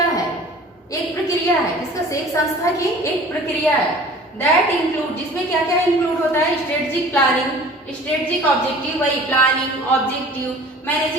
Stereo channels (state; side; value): normal; both; correlation 0.46